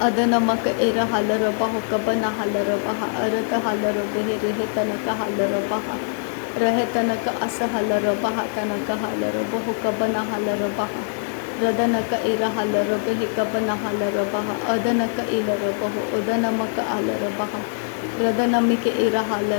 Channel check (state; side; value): silent; right; digital silence